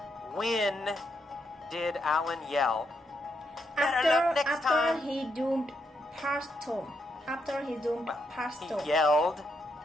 When did Alan yell, "Better luck next after time"? he zoomed past Tom. After he zoomed past He Tom. yelled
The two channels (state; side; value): normal; both; correlation 0.79